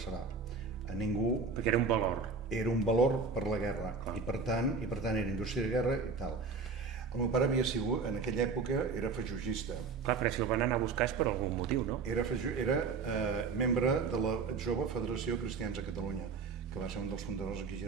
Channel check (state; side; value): quieter; left; 4.8 dB